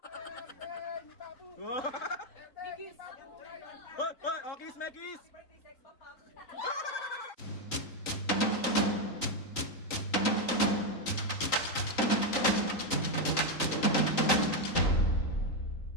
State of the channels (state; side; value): late; right; 3.9 ms